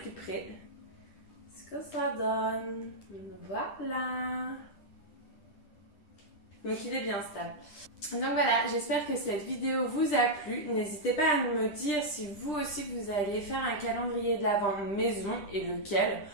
près ce que ça donne. Voilà. Donc il est bien stable. Donc voilà, j'espère que cette vidéo vous a plu. N'hésitez pas à me dire si vous aussi vous allez faire un calendrier de l'Avent maison et lequel.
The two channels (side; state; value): right; late; 10 ms